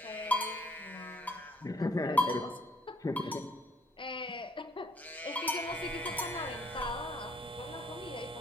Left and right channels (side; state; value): both; normal; correlation 0.63